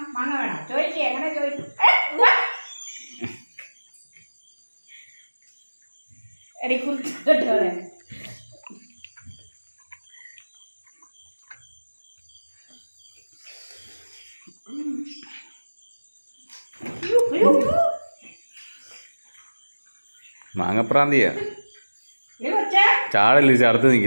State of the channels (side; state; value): both; inverted; correlation -1.00